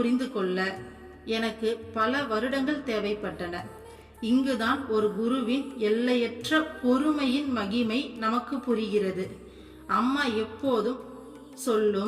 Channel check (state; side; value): identical; both; correlation 1.00